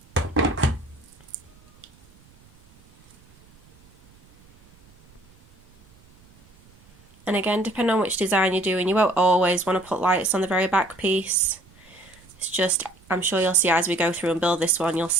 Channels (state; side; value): noise; right; rumble, 28 dB below the sound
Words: And again, depending on which design you're doing, you won't always want to put lights on the very back piece. It's just, I'm sure you'll see as we go through and build this one, you'll